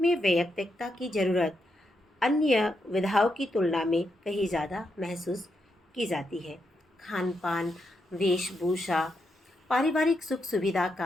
में वैयक्तिकता की जरूरत अन्य विधाओं की तुलना में कहीं ज़्यादा महसूस की जाती है। खान पान, वेशभूषा, पारिवारिक सुख सुविधा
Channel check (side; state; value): both; normal; correlation 0.82